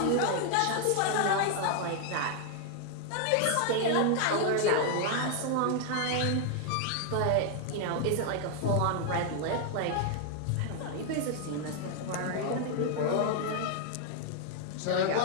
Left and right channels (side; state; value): both; different; correlation 0.00